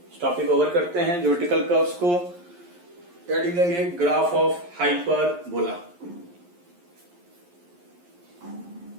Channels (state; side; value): late; left; 11 ms